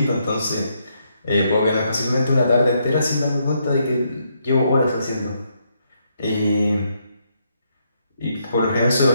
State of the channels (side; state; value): both; inverted; correlation -0.76